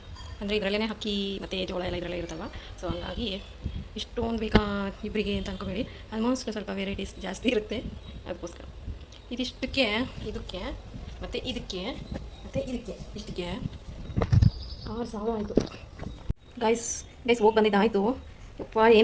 ಅಂದರೆ ಇದರಲ್ಲೇ ಅಕ್ಕಿ ಮತ್ತು ಜೋಳ ಎಲ್ಲ ಇದರಲ್ಲೇ ಇರುತ್ತಲ್ವ. ಸೊ ಹಂಗಾಗಿ ಇಷ್ಟೊಂದು ಬೇಕಾ ಇಬ್ಬರಿಗೆ ಅಂತ ಅನ್ಕೋಬೇಡಿ. ಆಲ್ಮೋಸ್ಟ್ ಸ್ವಲ್ಪ ವೆರೈಟೀಸ್ ಜಾಸ್ತಿ ಇರುತ್ತೆ, ಅದಕ್ಕೋಸ್ಕರ ಇದಿಷ್ಟಕ್ಕೆ ಇದಕ್ಕೆ ಮತ್ತು ಇದಕ್ಕೆ ಮತ್ತು ಇದಕ್ಕೆ ಇಷ್ಟಕ್ಕೆ 6,000 ಆಯಿತು ಗೈಸ್. ಹೋಗಿ ಬಂದಿದ್ದಾಯಿತು. ಯಪ್ಪ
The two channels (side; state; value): both; identical; correlation 1.00